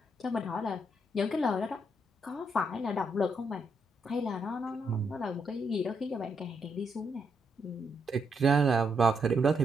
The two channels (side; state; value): both; normal; correlation 0.78